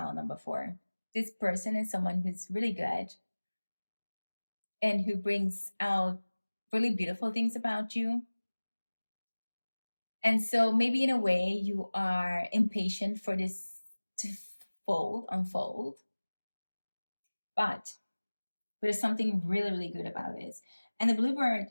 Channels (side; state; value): both; inverted; correlation -1.00